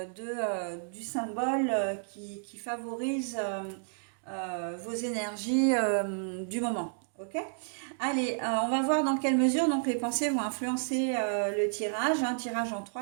du symbole qui favorise vos énergies du moment. Ok. Allez, on va voir dans quelle mesure donc les pensées vont influencer le tirage. Un tirage en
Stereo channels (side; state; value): left; silent; digital silence